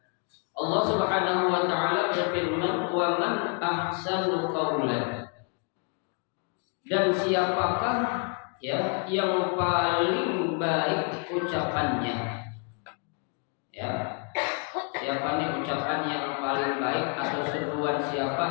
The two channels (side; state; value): right; quieter; 37.3 dB